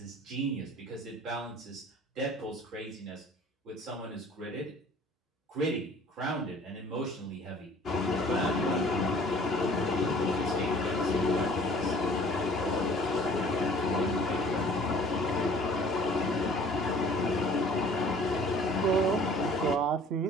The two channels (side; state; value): both; normal; correlation 0.51